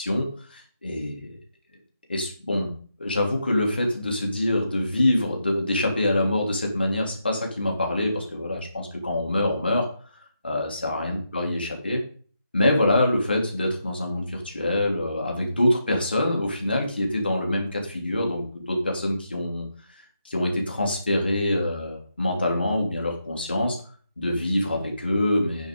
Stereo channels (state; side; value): inverted; both; correlation -0.82